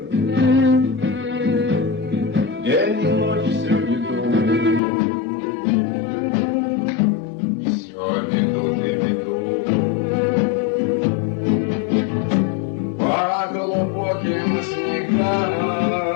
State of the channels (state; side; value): drops out; right; at 4.8 s